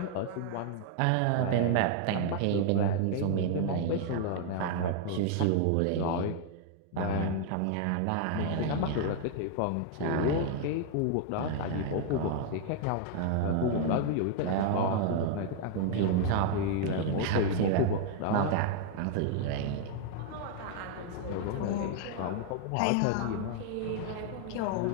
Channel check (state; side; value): different; both; correlation 0.00